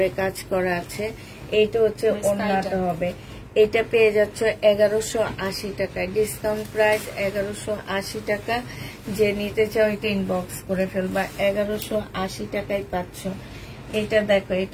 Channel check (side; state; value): both; identical; correlation 1.00